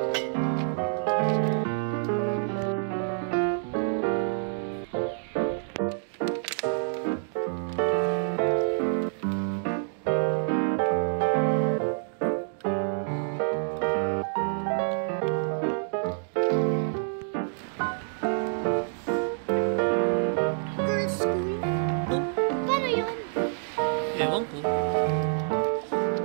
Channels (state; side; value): silent; left; digital silence